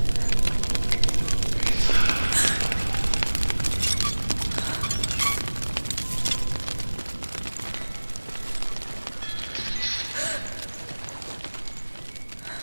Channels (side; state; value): both; inverted; correlation -1.00